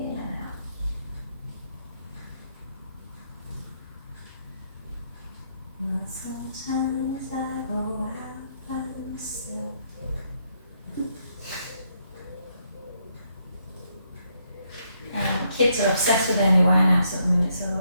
and out. Well, sometimes I go out by myself. Kids are obsessed with Amy Winehouse at the minute, so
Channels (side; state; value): both; inverted; correlation -0.75